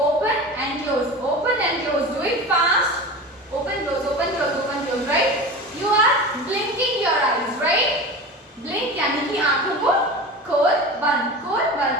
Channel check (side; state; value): both; normal; correlation 0.31